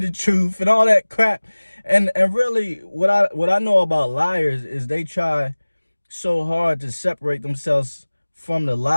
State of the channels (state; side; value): inverted; both; correlation -1.00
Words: truth and all that crap. And really, what I know about liars is they try so hard to separate themselves from the